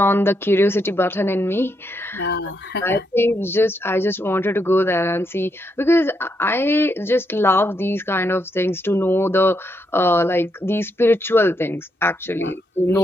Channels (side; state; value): both; normal; correlation 0.79